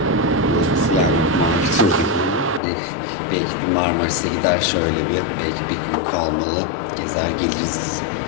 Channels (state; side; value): drops out; right; at 2.6 s